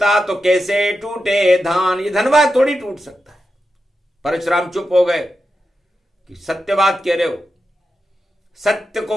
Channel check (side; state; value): both; normal; correlation 0.89